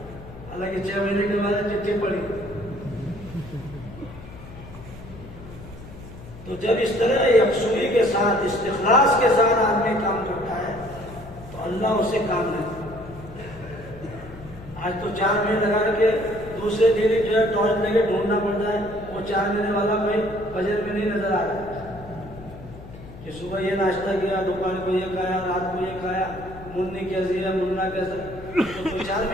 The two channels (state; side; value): noise; left; hum, 16 dB below the sound